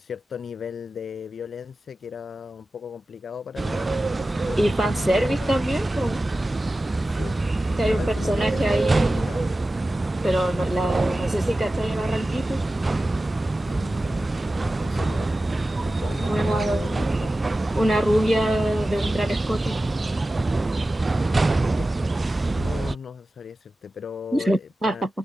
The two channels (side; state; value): both; normal; correlation 0.95